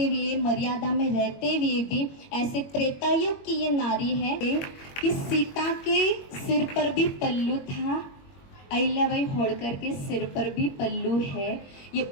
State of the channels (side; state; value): right; late; 21 ms